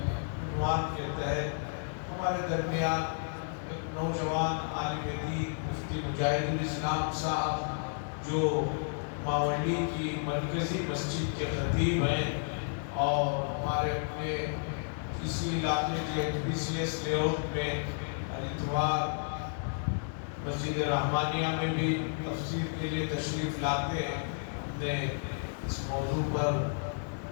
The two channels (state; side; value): silent; right; 56 dB below the other